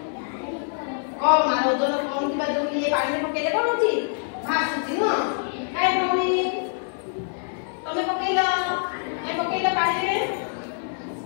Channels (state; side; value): silent; right; 62 dB below the other